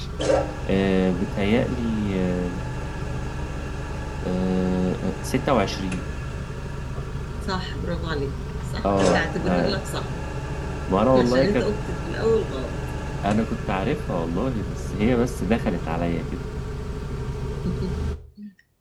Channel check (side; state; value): both; identical; correlation 1.00